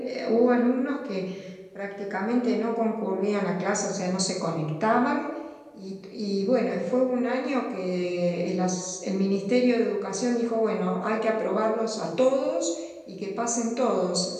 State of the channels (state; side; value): identical; both; correlation 1.00